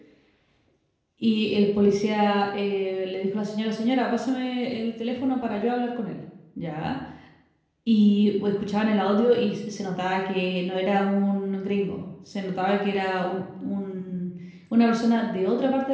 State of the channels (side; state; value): both; identical; correlation 1.00